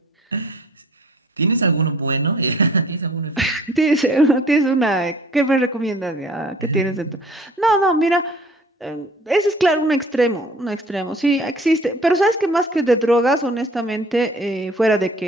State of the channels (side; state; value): both; normal; correlation 0.51